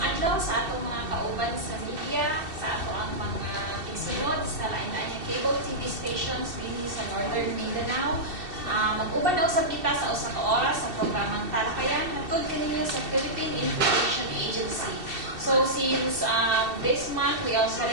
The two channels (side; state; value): left; late; 2.7 ms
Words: adlaw sa atong mga kauban sa media, sa ato ang mga tigsunod sa lain-lain cable TV stations dinhi sa Northern Mindanao. Mag-uban daw sa kita sa usa ka oras sa programang Talakayan hatod kaninyo sa Philippine Information Agency. So since this month we are